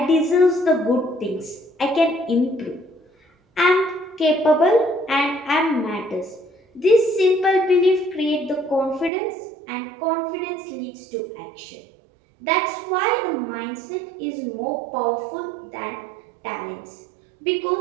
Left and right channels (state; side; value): drops out; left; at 9.1 s